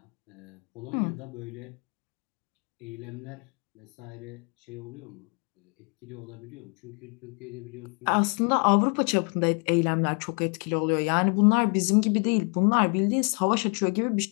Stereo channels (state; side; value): quieter; right; 36.4 dB